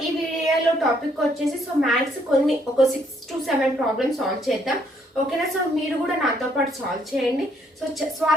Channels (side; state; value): both; normal; correlation 0.69